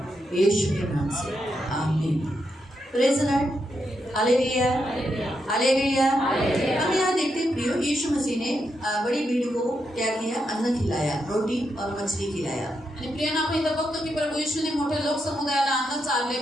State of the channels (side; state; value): both; normal; correlation 0.83